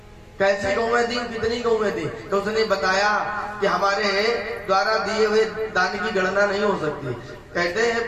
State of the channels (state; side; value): identical; both; correlation 1.00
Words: कैसी गौएं थी, कितनी गौएं थी? तो उसने बताया कि हमारे द्वारा दिए हुए दान की गणना नहीं हो सकती। कहते